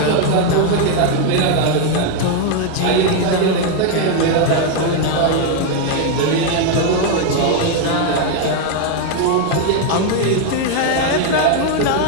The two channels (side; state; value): both; different; correlation 0.00